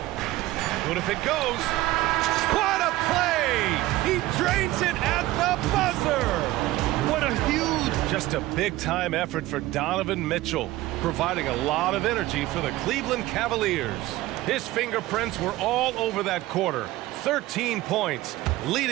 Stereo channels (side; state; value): left; quieter; 17.0 dB